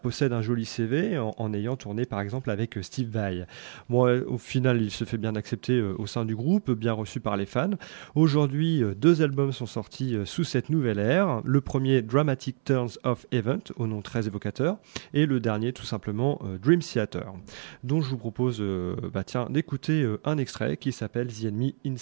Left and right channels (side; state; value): left; silent; 60 dB below the other